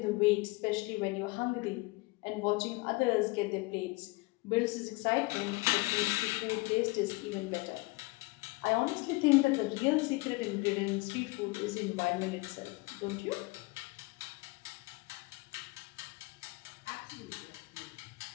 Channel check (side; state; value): right; quieter; 25.0 dB